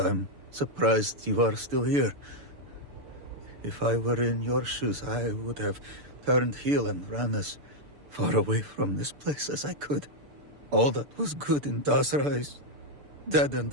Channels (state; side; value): late; left; 6.8 ms